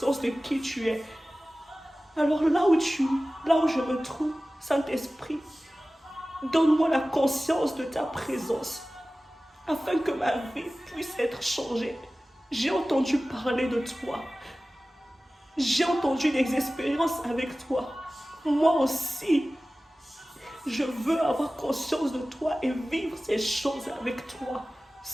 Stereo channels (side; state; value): both; normal; correlation 0.97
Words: de qui tu es. Alors là où je me trouve, Saint-Esprit, donne-moi la conscience de ta présence, afin que ma vie puisse être changée. J'ai entendu parler de toi. J'ai entendu des expériences avec toi. Moi aussi, je veux avoir conscience de toi et vivre ces choses avec toi.